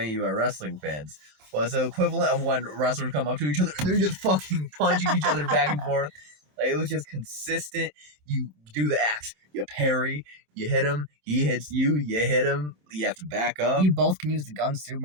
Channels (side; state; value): left; late; 27 ms